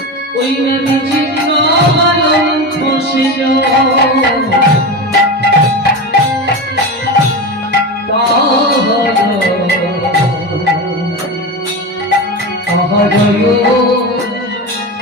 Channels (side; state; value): both; normal; correlation 0.22